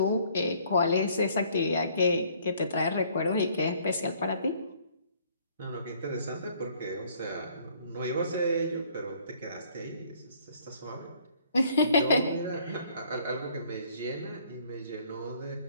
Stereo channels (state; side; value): inverted; both; correlation -0.60